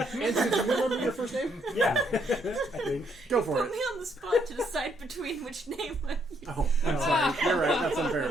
do you remember your first name? Yeah. I think. Go for Put it. me on the spot to decide between which name I use. Oh, I'm sorry. You're right. That's unfair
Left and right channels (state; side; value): normal; both; correlation 0.72